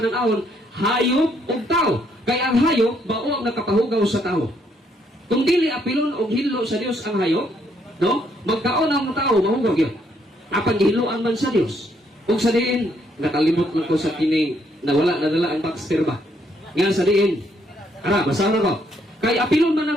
hayop ug tao. Kaya ang hayop bao ang nakapahugaw sa tao. Kung dili apilon og hinlo sa Dios ang hayop, no? Magkaon ang tao mahugaw gyud. Apan gihiluan man sa Dios. Ug sa diin nakalimot man ko sa kining nawala nadala ang Baxter ba. Nga sa diin. Ara, basahan ko. Kay apilon man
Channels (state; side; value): normal; both; correlation 0.71